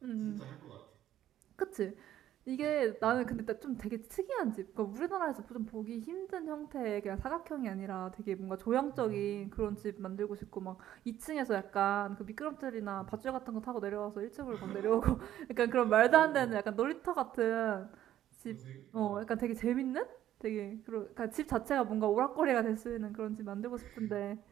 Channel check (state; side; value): quieter; left; 12.1 dB